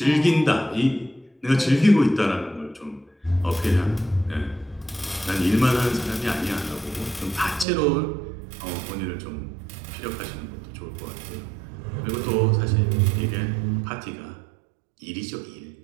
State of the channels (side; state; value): left; drops out; at 7.7 s